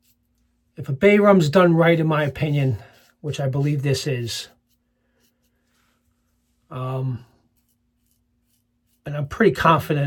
If a Bay Rum's done right, in my opinion, which I believe this is, and I'm pretty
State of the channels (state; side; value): identical; both; correlation 1.00